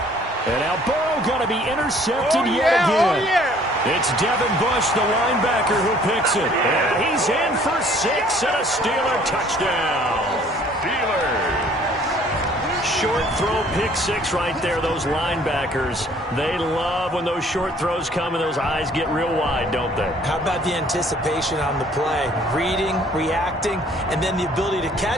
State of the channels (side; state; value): both; normal; correlation 0.57